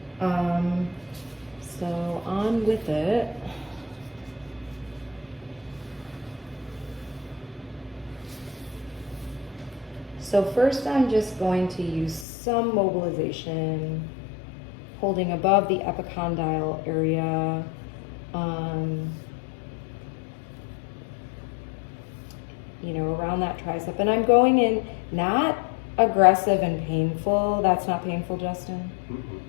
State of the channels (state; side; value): drops out; right; at 12.2 s